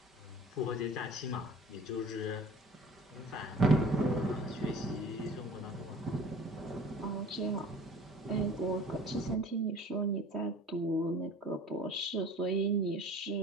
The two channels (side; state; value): both; normal; correlation 0.45